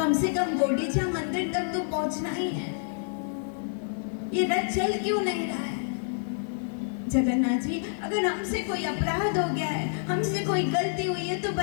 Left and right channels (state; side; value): silent; right; 59 dB below the other